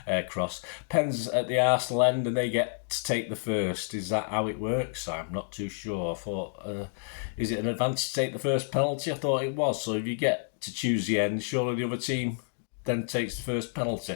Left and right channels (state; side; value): silent; right; digital silence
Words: cross. Pens at the Arsenal end and they get to take the first. Is that how it works? I'm not too sure. I thought, is it an advantage to take the first penalty? I thought it was. So if you get to choose the end, surely the other team then takes the first